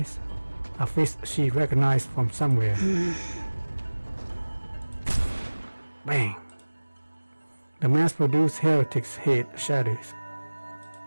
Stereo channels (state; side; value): inverted; both; correlation -1.00